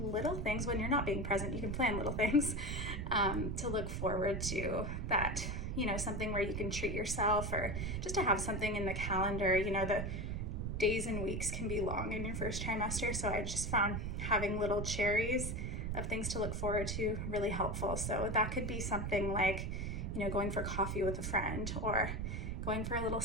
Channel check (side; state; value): right; noise; rumble, 2 dB below the sound